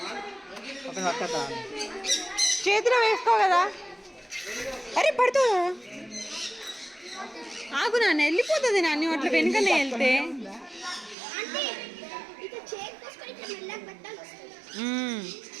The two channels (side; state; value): left; drops out; at 11.2 s